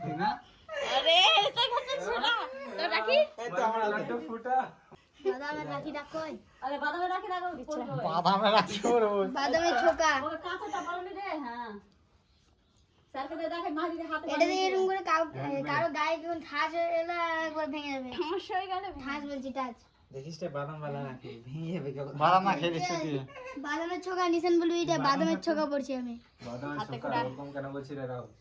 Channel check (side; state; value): both; identical; correlation 1.00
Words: না? আরে এসে গেছে ছোড়া। তো রাখি এই তো আমার লাড্ডু ফুটা। বাদামের রাখিটা কই? আরে বাদামের রাখি রাখো পড়বে। বাদামে রাখি ওর ওই। বাদামের ছোকা। ওকে কাঁচাটা বলনি রে। হ্যাঁ স্যারকে দে, দেখে মা যদি হাতে এটা দিয়ে এরকম করে কারো গায়ে যখন ঠাস হয়ে এলো একবার ভেঙে যাবে। সমস্যা হয়ে গেলে ঠাস বলছি টাচ। দেখিস রে বাদাম বালা রাখি ভেঙে যাবে কেমন। বাদাম না খেয়ে দিচ্ছি তুই। বাদামের ছোকা নিছেন বলবি, এটা বাদামের ছোকা পড়ছি আমি। হাতে করে